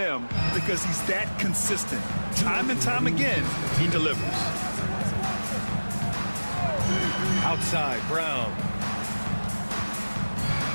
because he's that consistent. Time and time again, he delivers. Outside, Brown.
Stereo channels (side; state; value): both; inverted; correlation -1.00